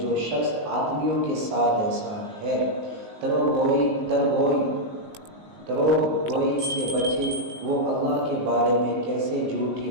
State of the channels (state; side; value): late; left; 19 ms